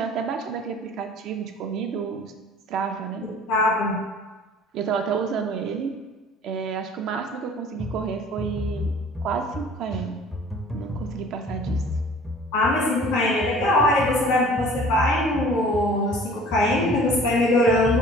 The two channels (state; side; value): normal; both; correlation 0.48